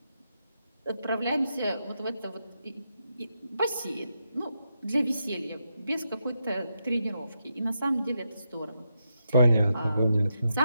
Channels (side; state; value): both; inverted; correlation -0.84